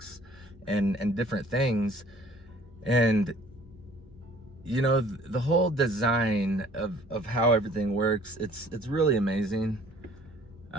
and different things. And, you know, the whole design of how everything works, it's really amazing.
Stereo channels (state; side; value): normal; both; correlation 0.55